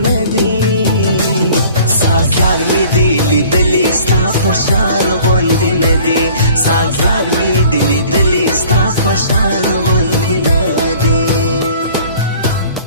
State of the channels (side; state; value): both; inverted; correlation -0.50